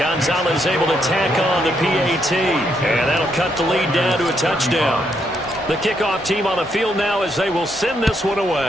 able to tack on the PAT. And that'll cut the lead down to a touchdown. The kickoff team on the field now as they will send this one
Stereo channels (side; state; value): both; normal; correlation 0.76